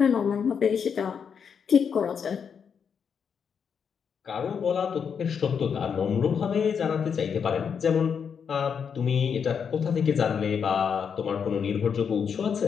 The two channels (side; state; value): right; quieter; 6.9 dB